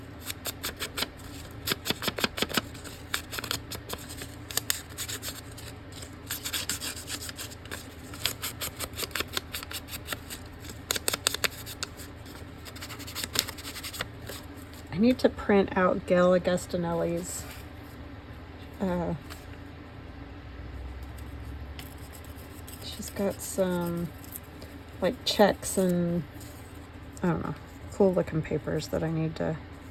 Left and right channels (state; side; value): identical; both; correlation 1.00